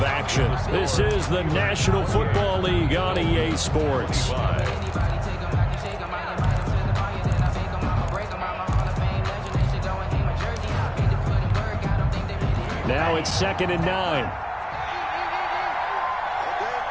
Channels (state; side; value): identical; both; correlation 1.00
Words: action. This is the National Football League on EA Sports. Now it's 2nd and 9.